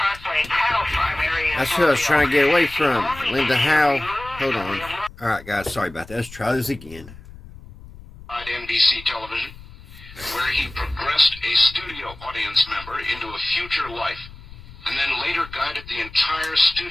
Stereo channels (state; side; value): noise; left; rumble, 18 dB below the sound